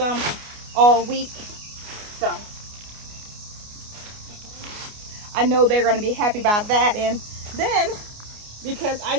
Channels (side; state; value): left; late; 29 ms